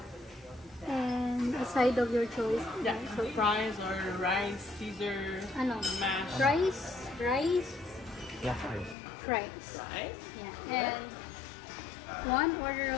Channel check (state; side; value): drops out; right; at 9.0 s